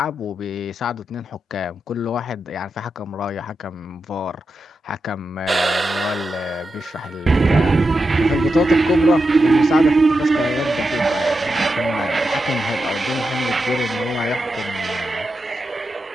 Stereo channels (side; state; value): both; normal; correlation 0.88